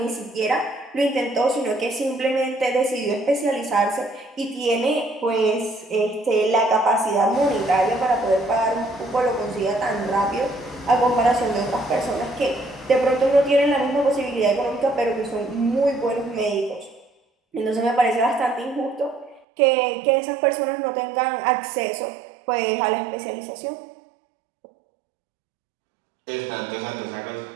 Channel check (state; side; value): drops out; left; at 19.4 s